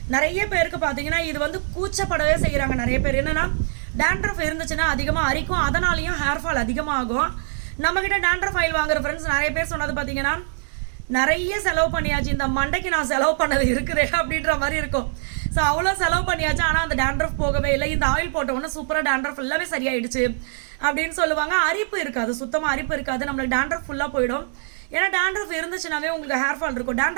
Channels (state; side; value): silent; left; 63 dB below the other